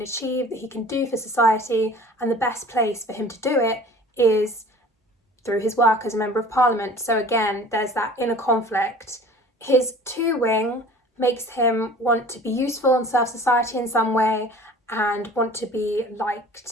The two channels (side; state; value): both; normal; correlation 0.45